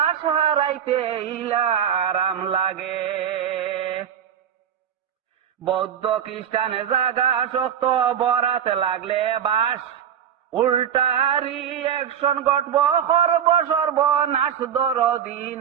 হারাইতে ইলা আরাম লাগে। বৌদ্ধ খ্রিস্টানে জাগা শক্ত বরাতে লাগলে বাস। উল্টারি অ্যাকশন ঘটব সর্বনাশ দরদি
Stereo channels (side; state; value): left; quieter; 8.9 dB